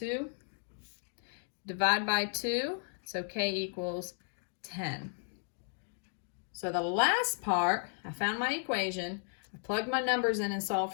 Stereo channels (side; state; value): right; silent; 55 dB below the other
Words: Divide by 2, so K equals 10. So the last part, I found my equation, I plugged my numbers in and solved